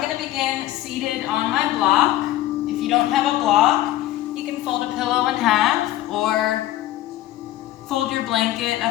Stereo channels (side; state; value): right; quieter; 14.3 dB